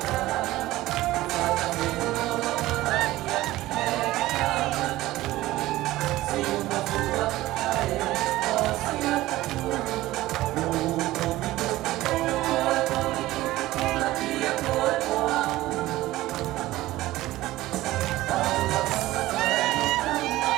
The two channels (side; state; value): left; quieter; 16.9 dB